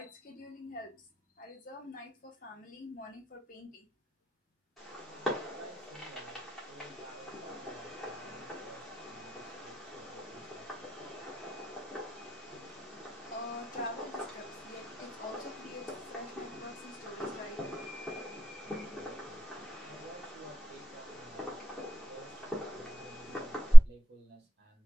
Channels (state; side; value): normal; both; correlation 0.93